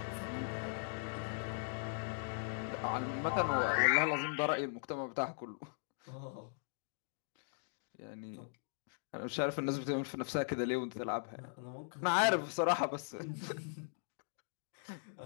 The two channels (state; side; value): silent; right; digital silence